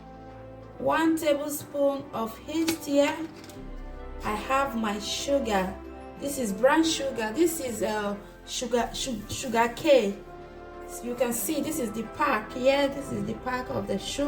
1 tablespoon of yeast here. I have my sugar. This is brown sugar. This is sugar cane. So you can see this is the pack here. This is the pack of the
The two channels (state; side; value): identical; both; correlation 1.00